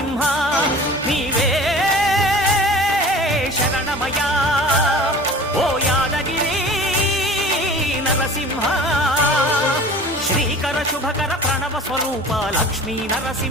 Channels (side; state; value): both; normal; correlation 0.41